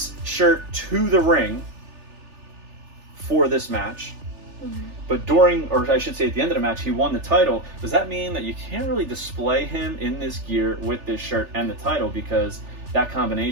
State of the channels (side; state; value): left; late; 3.4 ms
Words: shirt to the ring for this match, but during, or I should say at the end of the match, he won the title, does that mean that you can't really display him in this gear with this shirt and the title, because that